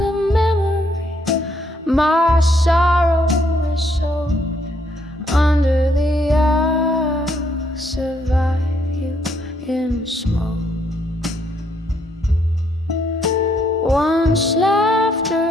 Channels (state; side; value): normal; both; correlation 0.71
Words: memory. My sorrow is soaked under the eye. Survive you in smoke. Once